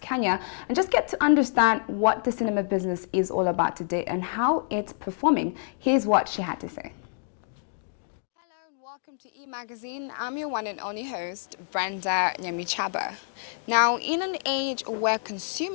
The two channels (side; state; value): right; silent; digital silence